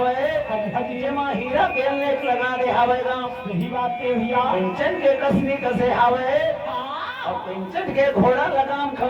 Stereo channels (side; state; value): both; identical; correlation 1.00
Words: जे मां हीरा के लेख लगा दे आवे तो यही बात के भैया कंचन के कसनी कसे आवे और पिंचट के घोड़ा लगाम